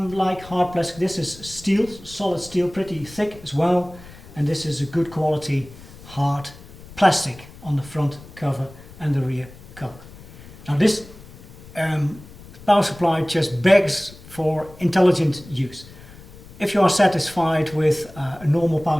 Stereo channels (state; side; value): noise; left; rumble, 19 dB below the sound